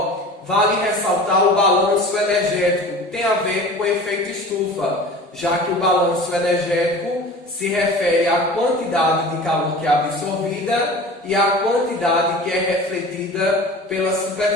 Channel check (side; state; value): both; normal; correlation 0.39